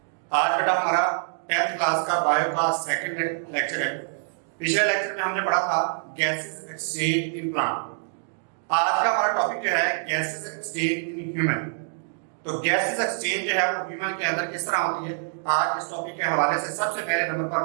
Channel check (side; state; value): left; silent; digital silence